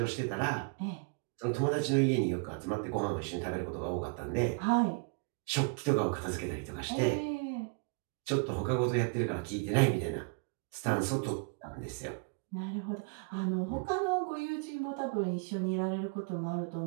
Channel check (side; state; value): left; quieter; 32.4 dB